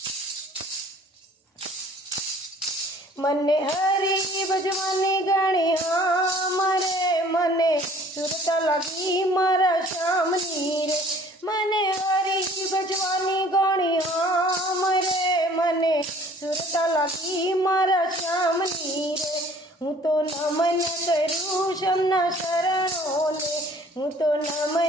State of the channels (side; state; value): both; normal; correlation 0.53